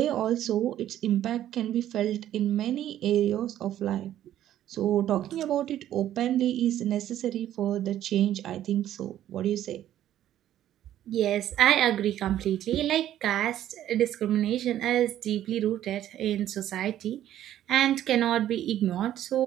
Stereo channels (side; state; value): left; quieter; 12.0 dB